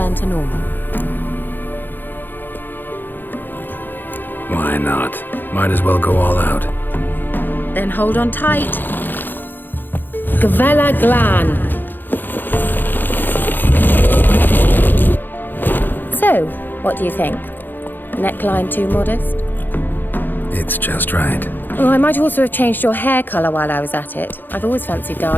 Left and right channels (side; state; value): right; late; 0.091 ms